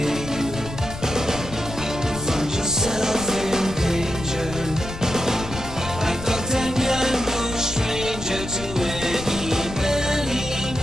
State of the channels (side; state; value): left; noise; rumble, 11 dB below the sound